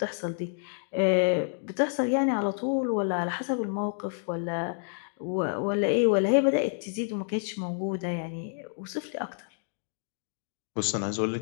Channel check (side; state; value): right; silent; 59 dB below the other